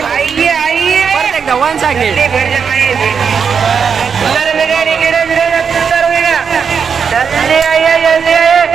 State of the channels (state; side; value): quieter; left; 6.5 dB